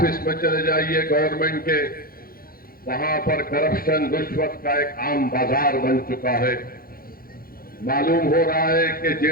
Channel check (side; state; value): right; late; 0.42 ms